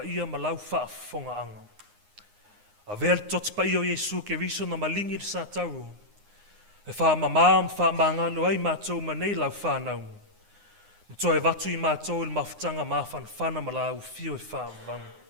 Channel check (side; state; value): left; late; 9.7 ms